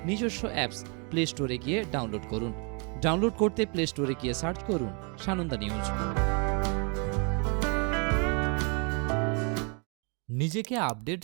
নিজস্ব অ্যাপস প্লে স্টোরে গিয়ে ডাউনলোড করুন। ডাউনলোড করতে প্লে স্টোরে গিয়ে সার্চ করুন সানন্দা নিউজ। নিজেকে আপডেট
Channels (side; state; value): left; quieter; 34.9 dB